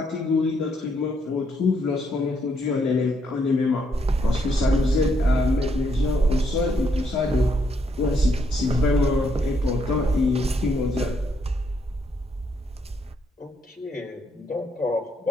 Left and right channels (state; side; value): normal; both; correlation 0.74